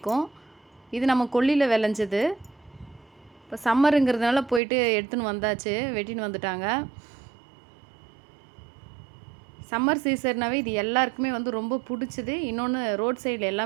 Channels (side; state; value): left; drops out; at 4.6 s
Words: இது நம்ம கொல்லியில் விளைஞ்சது. இப்போ சம்மருங்கிறதுனால போயிட்டு எடுத்துன்னு வந்தாச்சு, வெட்டின்னு வந்துட்டாங்க. சம்மர் சீசன்னாவே இது எல்லாருக்குமே ரொம்ப பிடிச்சது. இன்னொன்று ரோட் சைடில்